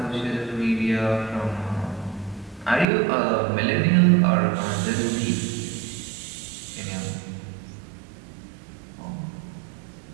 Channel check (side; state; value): left; drops out; at 2.9 s